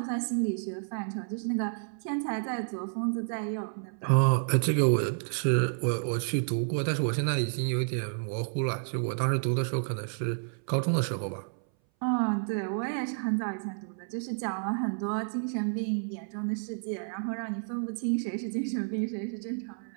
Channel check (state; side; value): silent; left; 58 dB below the other